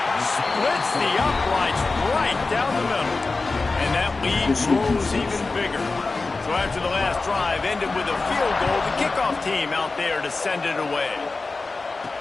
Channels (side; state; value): right; quieter; 3.7 dB